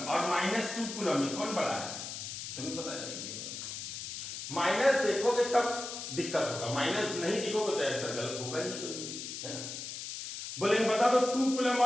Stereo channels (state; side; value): noise; left; hiss, 7 dB below the sound